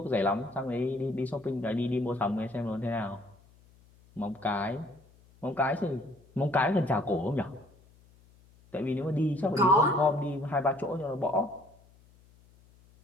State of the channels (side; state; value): left; noise; hum, 28 dB below the sound